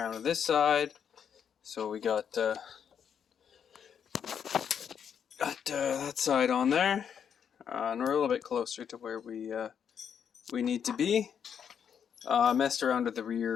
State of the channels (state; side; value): quieter; right; 7.9 dB